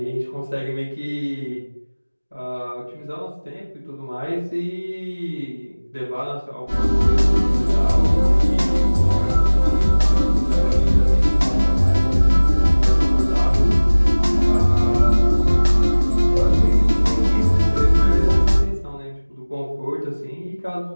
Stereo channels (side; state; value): both; inverted; correlation -1.00